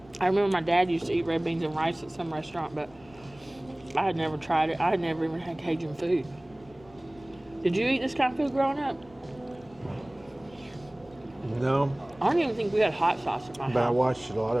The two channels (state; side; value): noise; left; rumble, 25 dB below the sound